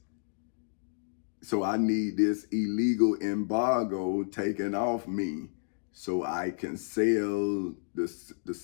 So I need this illegal embargo taken off me so I can sail the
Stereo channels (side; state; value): right; silent; digital silence